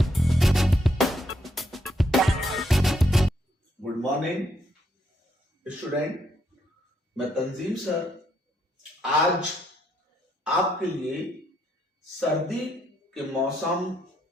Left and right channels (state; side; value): normal; both; correlation 0.75